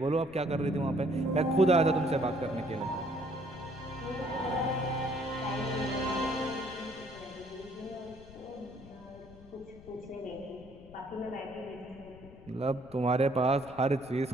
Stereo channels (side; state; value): left; noise; rumble, 20 dB below the sound